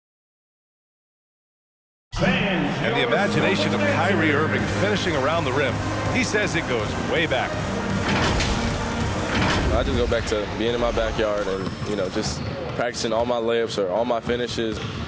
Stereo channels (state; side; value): identical; both; correlation 1.00